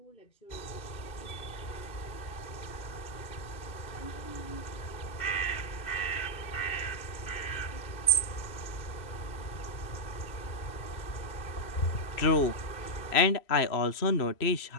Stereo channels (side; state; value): right; late; 2.6 ms